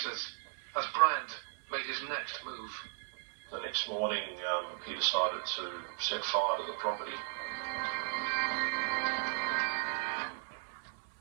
as Bryant made his next move. The next morning, he decided to set fire to the property.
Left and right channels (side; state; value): left; silent; 54 dB below the other